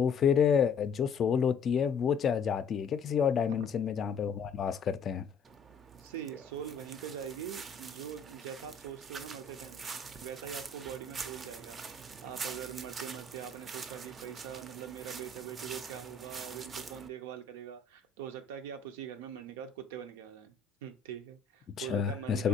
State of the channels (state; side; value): quieter; right; 4.9 dB